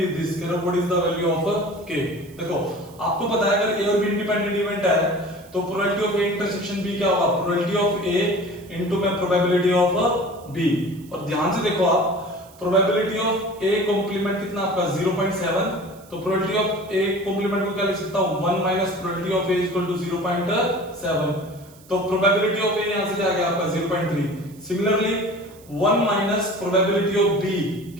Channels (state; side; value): noise; right; hiss, 25 dB below the sound